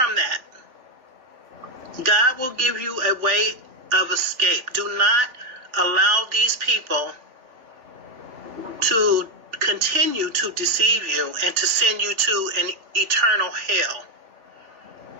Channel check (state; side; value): late; left; 3.4 ms